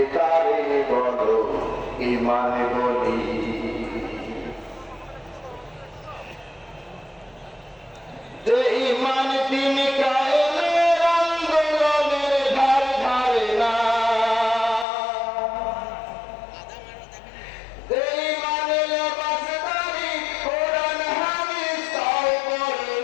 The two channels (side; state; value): right; drops out; at 14.9 s